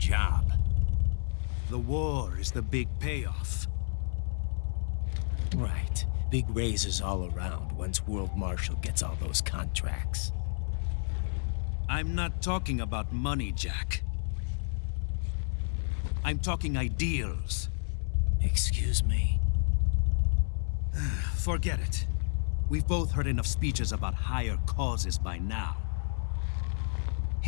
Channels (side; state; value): right; silent; digital silence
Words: The war is the big payoff. Right. Big raises all around once World Marshal gets all those contracts. I'm not talking about money, Jack. I'm talking ideals. Excuse me? Forget it. We've both heard enough speeches about higher causes by now.